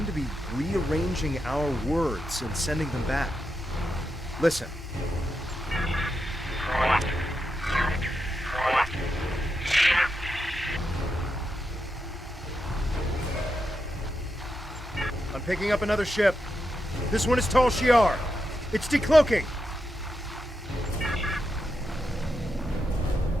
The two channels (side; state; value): both; normal; correlation 0.86